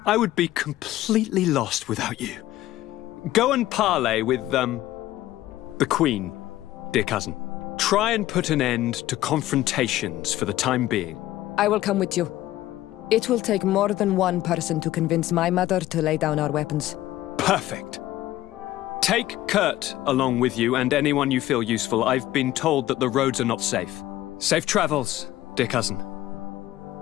I would be completely lost without you. Go and parley with, the Queen, dear cousin. Try and put an end to confrontations for the time being. I will come with you. It will take more than one person to convince my mother to lay down our weapons. Perfect. Take Kurt along with you and anyone you feel useful. I've been told that the roads are not safe. Safe travels, dear cousin.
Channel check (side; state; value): right; quieter; 15.1 dB